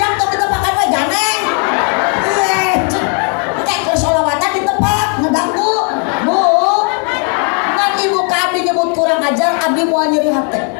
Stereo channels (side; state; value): right; quieter; 39.8 dB